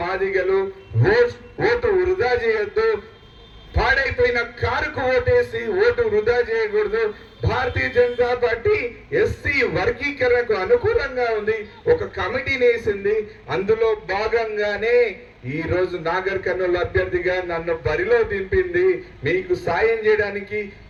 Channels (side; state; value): both; identical; correlation 1.00